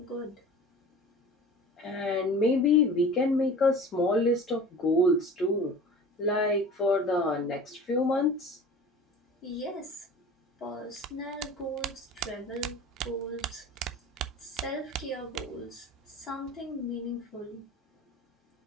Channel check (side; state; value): both; normal; correlation 0.40